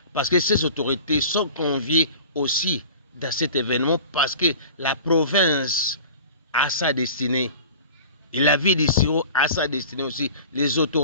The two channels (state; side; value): inverted; both; correlation -0.40